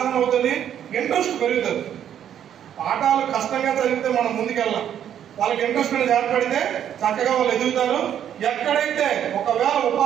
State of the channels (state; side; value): quieter; left; 9.8 dB